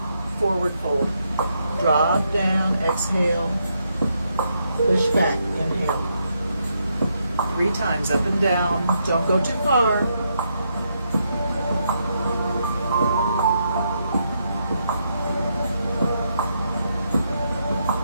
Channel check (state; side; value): inverted; both; correlation -0.79